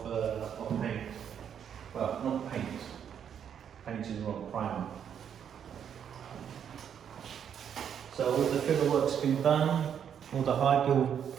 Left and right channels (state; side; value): quieter; left; 8.4 dB